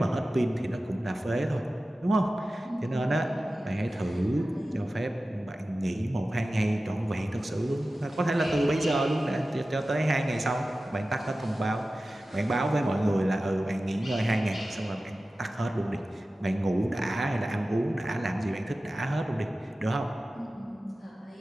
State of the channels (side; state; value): both; normal; correlation 0.95